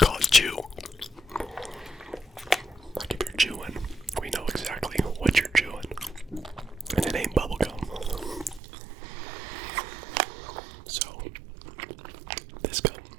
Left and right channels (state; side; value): drops out; left; at 8.6 s